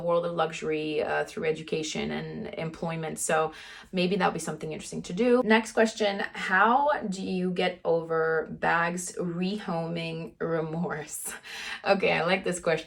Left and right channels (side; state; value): both; identical; correlation 1.00